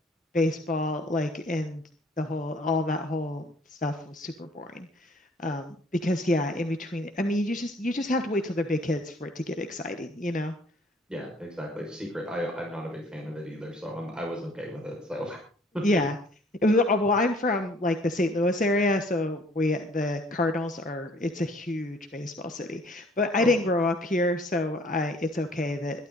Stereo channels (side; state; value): both; normal; correlation 0.57